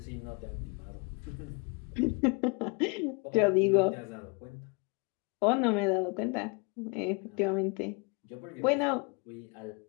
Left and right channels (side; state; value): right; quieter; 32.2 dB